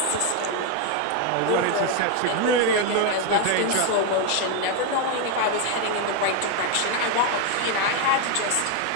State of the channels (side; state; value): both; different; correlation 0.01